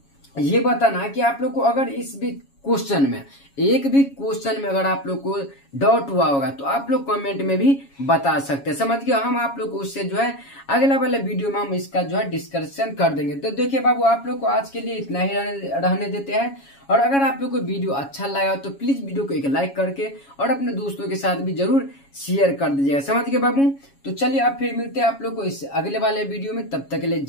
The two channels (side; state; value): right; late; 7.2 ms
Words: ये बताना कि आप लोग को अगर इस भी क्वेश्चन में, एक भी क्वेश्चन में अगर आप लोग को डाउट हुआ होगा तो आप लोग कमेंट में भी बता सकते हैं। समझ गए। हम आप लोग को उससे जो है अगला वाले वीडियो में हम इसका जो है डिस्कशन कर देंगे। तो देखिए बाबू, आप लोग को आज के लिए इतना ही रहने देते हैं। और अगर आप लोग को वीडियो अच्छा लगा तो प्लीज वीडियो को एक लाइक करके और अपने दोस्तों के साथ भी जरूर शेयर कर दीजिएगा। समझ गए बाबू। तो चलिए अब फिर मिलते हैं आप लोग को इस अगले वाले वीडियो में। तब तक के लिए